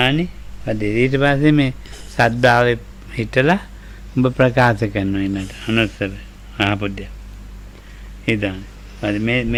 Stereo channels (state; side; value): identical; both; correlation 1.00